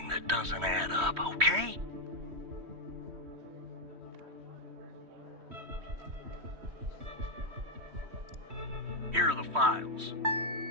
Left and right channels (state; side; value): late; left; 3.1 ms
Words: that doesn't add up, okay? Here are the files.